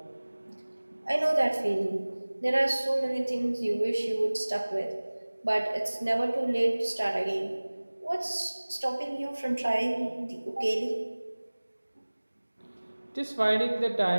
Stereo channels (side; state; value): both; inverted; correlation -1.00